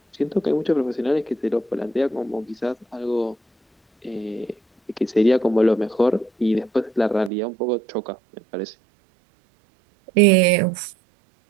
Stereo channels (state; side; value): drops out; left; at 7.3 s